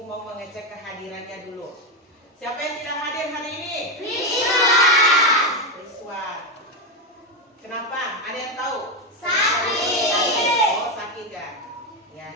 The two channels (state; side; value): normal; both; correlation 0.09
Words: mau mengecek kehadirannya dulu. Siapa yang tidak hadir hari ini? Rizwan. Kenapa? Ada yang tahu? Sakit. Oh, sakit ya.